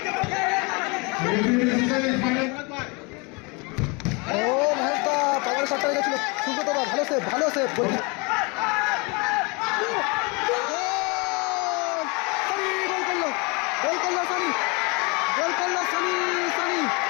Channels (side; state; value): right; quieter; 29.5 dB